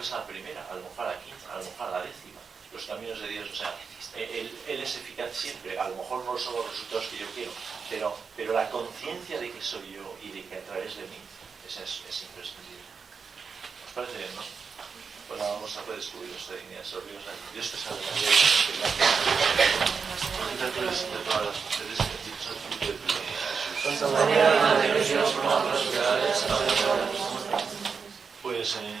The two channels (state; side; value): quieter; left; 5.6 dB